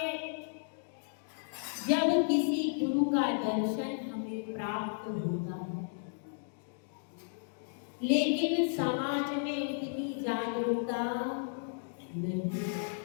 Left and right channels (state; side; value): silent; right; digital silence